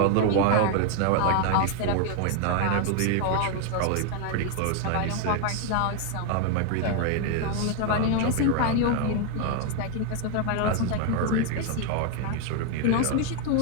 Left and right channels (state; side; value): different; both; correlation 0.00